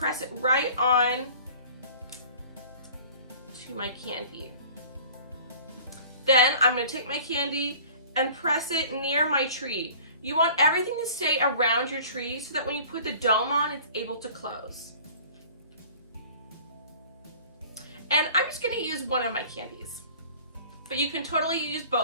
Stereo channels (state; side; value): inverted; both; correlation -0.46